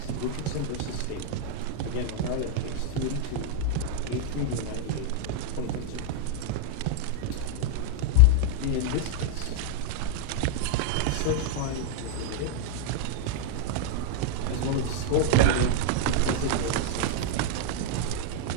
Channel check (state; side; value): different; both; correlation 0.00